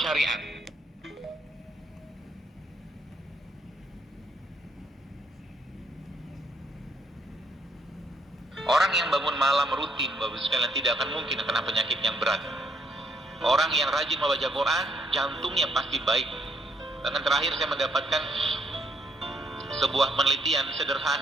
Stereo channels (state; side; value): normal; both; correlation 0.71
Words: syariat. Orang yang bangun malam rutin, Bapak sekalian, tidak akan mungkin kena penyakit yang berat. Orang yang rajin membaca Quran, jantungnya pasti baik. Dan terakhir saya mendapatkan sebuah penelitian